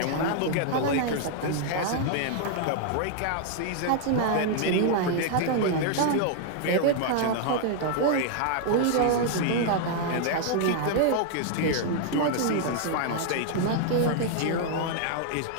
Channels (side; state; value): both; different; correlation -0.01